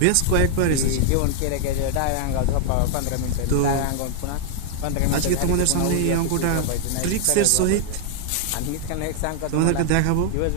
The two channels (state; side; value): different; both; correlation 0.00